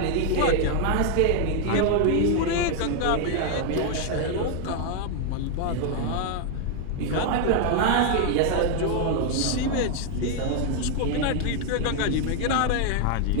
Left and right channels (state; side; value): different; both; correlation 0.00